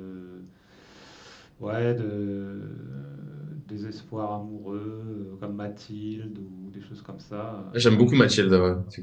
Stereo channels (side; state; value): both; identical; correlation 1.00